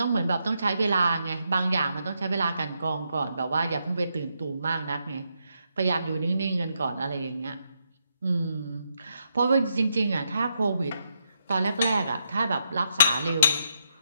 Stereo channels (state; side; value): inverted; both; correlation -0.80